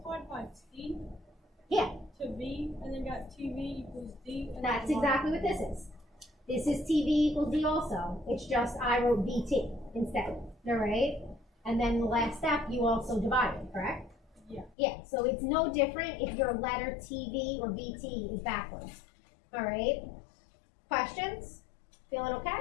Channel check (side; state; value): right; drops out; at 14.8 s